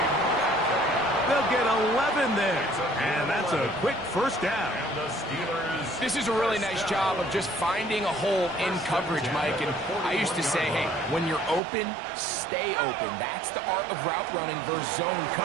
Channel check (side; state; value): left; drops out; at 11.6 s